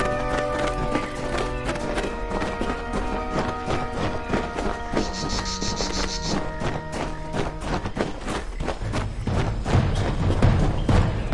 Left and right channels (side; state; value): both; identical; correlation 1.00